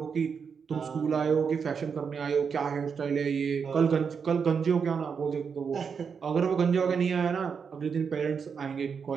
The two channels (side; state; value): left; quieter; 6.2 dB